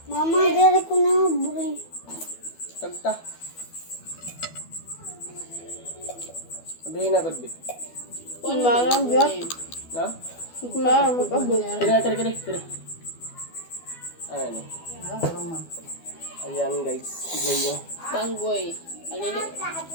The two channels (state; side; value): late; right; 12 ms